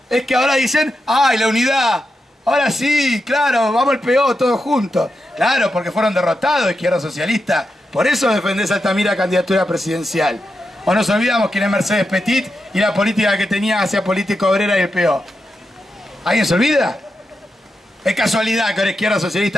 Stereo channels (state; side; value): normal; both; correlation 0.87